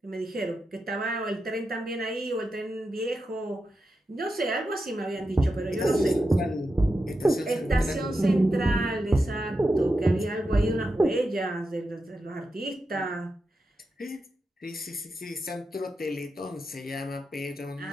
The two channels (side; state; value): both; normal; correlation 0.88